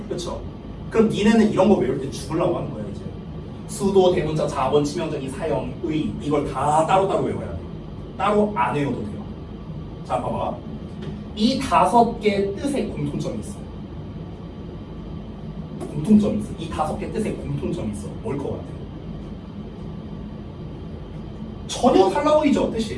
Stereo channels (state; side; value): identical; both; correlation 1.00